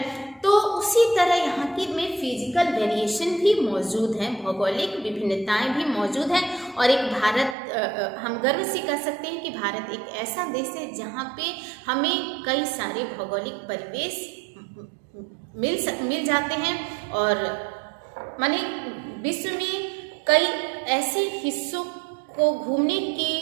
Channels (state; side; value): drops out; left; at 7.6 s